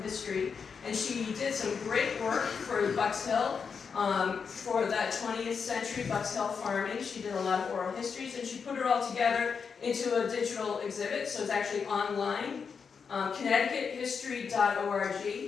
history, and she did some great work for Bucks Hill, for that 20th century Bucks Hill farming. She did a lot of oral histories, and she put it all together into a digital exhibit, so it's actually online.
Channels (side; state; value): right; quieter; 6.0 dB